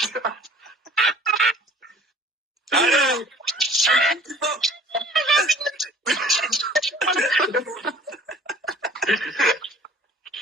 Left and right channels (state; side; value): normal; both; correlation 0.49